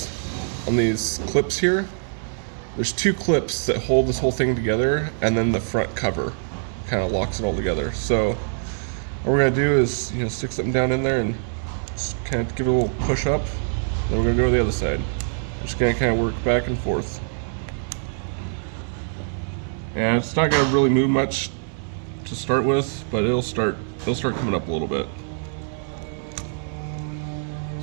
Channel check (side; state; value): left; silent; 63 dB below the other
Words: on these clips here. There's two clips that hold this whole thing together, and then the front cover kind of locks it all together. So what we're going to do is stick something down in there and just kind of give it a little push up. Then we're going to go to the other side. We're just going to kind of work back and forth. And it's not going to really move much to start with, but it'll start coming up a little bit.